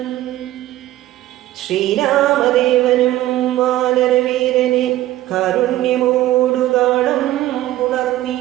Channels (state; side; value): quieter; left; 15.0 dB